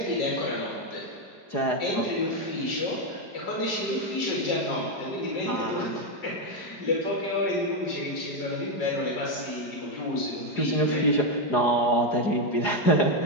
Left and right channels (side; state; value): right; late; 4.9 ms